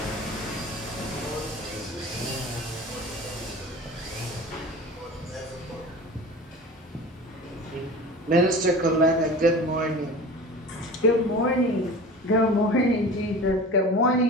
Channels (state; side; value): normal; both; correlation 0.37